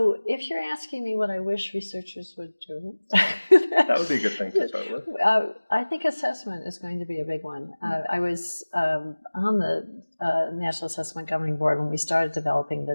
if you're asking me what I wish researchers would do, that would be a good thing to start with. I think assessment is going to be a big one. I was on the National Assessment Governing Board when we started developing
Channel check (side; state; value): both; inverted; correlation -1.00